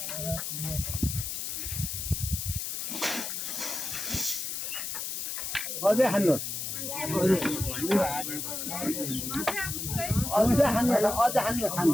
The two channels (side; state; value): left; noise; hiss, 4 dB below the sound